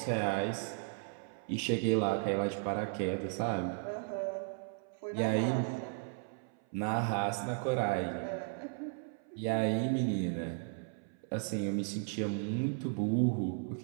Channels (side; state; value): left; silent; 54 dB below the other